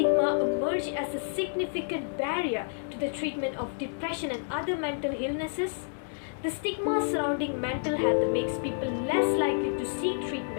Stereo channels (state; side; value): silent; right; digital silence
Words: emerged as a significant barrier to the treatment of depression and other mental illnesses? The stigma surrounding mental health makes people less likely to seek